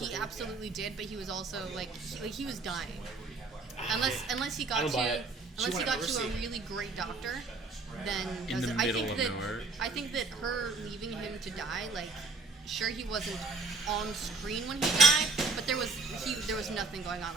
absolutely did, but he was also he was dying. Unless he I got don't buy it. unless he She got went to a overseas. really great doctor, then In the I middle think of that nowhere. I think that her leaving him to die, sure he wasn't on screen when he died, but there was nothing going on.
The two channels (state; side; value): quieter; left; 3.8 dB